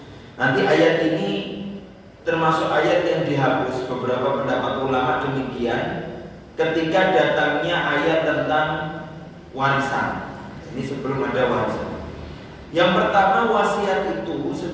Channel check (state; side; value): identical; both; correlation 1.00